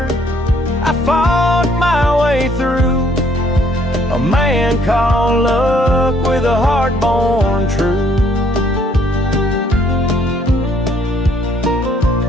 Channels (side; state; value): both; normal; correlation 0.65